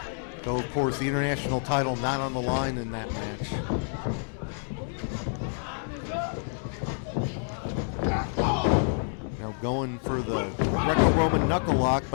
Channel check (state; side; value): silent; right; digital silence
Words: Though, of course, the international title not on the line in that match. Now going for the Greco-Roman knuckle lock,